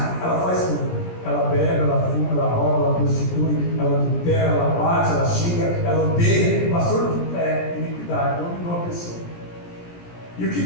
ela faz tudo. Ela bebe, ela fuma, ela rouba, ela prostitui, ela adultera, ela bate, ela xinga, ela odeia. Pastor, é iniquidade, dominou a pessoa. E o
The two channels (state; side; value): late; right; 17 ms